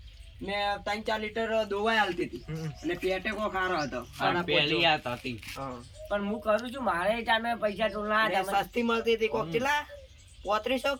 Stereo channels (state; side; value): identical; both; correlation 1.00